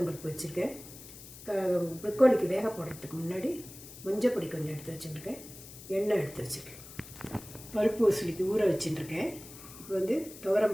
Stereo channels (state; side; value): noise; left; hiss, 16 dB below the sound